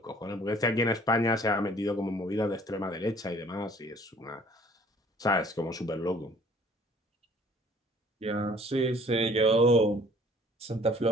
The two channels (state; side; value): normal; both; correlation 0.54